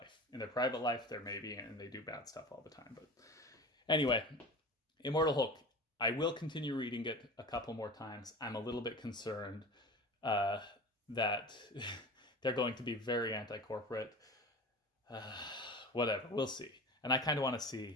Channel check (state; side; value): normal; both; correlation 0.34